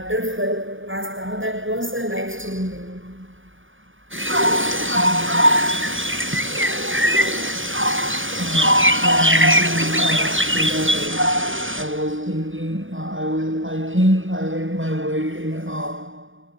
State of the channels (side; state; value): left; late; 0.57 ms